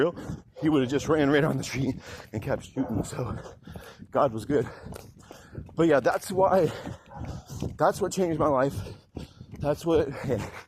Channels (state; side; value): identical; both; correlation 1.00